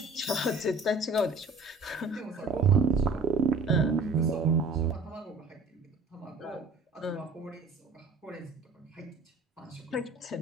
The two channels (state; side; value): quieter; left; 3.5 dB